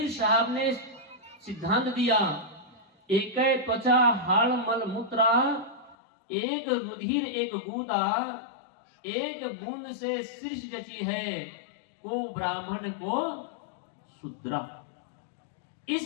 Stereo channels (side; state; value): right; drops out; at 6.0 s